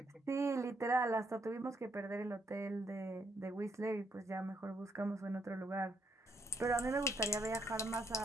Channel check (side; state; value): both; normal; correlation 0.73